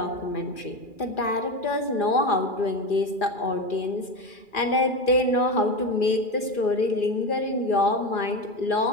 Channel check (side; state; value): right; late; 2.4 ms